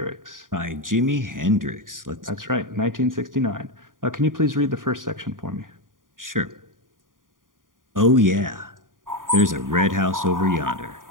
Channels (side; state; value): left; late; 0.89 ms